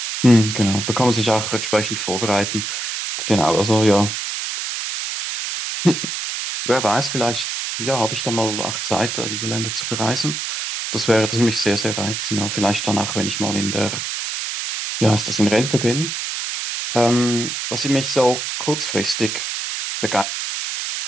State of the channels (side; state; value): right; noise; hiss, 4 dB below the sound